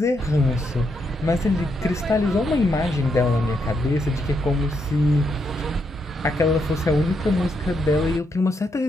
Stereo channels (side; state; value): both; normal; correlation 0.79